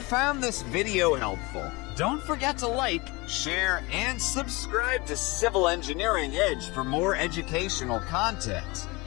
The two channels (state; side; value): quieter; right; 24.9 dB